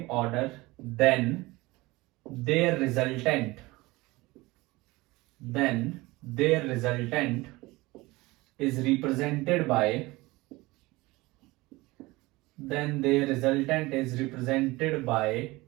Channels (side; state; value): left; quieter; 21.2 dB